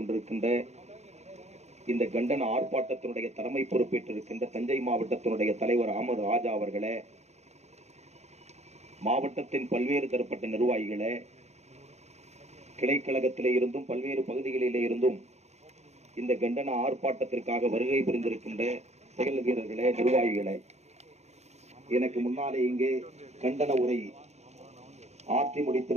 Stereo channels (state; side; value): late; left; 0.32 ms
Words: இந்த கண்டன ஆர்ப்பாட்டத்தினுடைய தலைமை பொறுப்பேற்றிருக்கின்ற தஞ்சை மாவட்டத்தினுடைய தலைவர் அஹமது ராஜா அவர்களே, மாவட்டத்தின் பல்வேறு தரப்பட்ட நிர்வாகிகளே, கிளைக்கழகத்திலே இருந்தும் பல்வேறு பகுதிகளிலே இருந்தும் இந்த கண்டன ஆர்ப்பாட்டத்திற்காக வருகை புரிந்திருக்கின்ற செயல் வீரர்களே, நிர்வாகிகளே, எனக்கு முன்னாலே இங்கே கண்டன உரை ஆற்றி